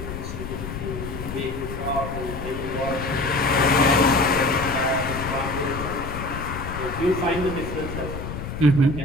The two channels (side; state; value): left; noise; rumble, 7 dB below the sound